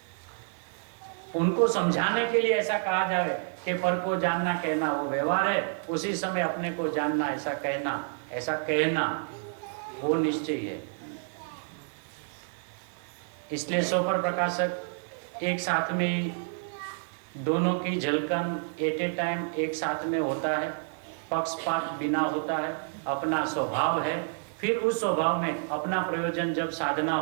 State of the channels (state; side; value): silent; left; digital silence